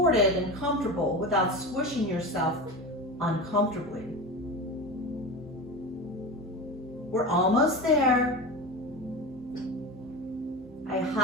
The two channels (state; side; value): normal; both; correlation 0.27